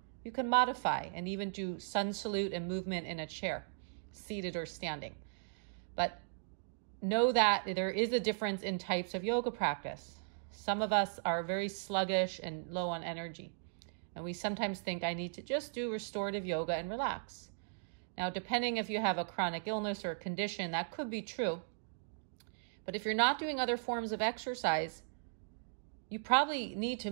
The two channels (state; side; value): silent; left; digital silence